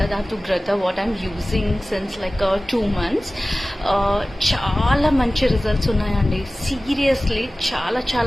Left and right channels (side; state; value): both; normal; correlation 0.97